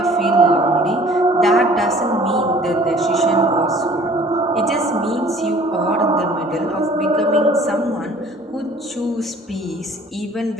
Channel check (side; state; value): both; normal; correlation 0.52